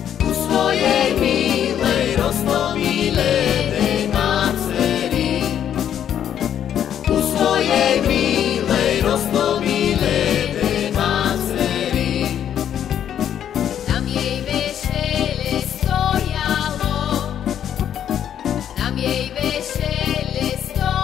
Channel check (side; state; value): right; quieter; 9.8 dB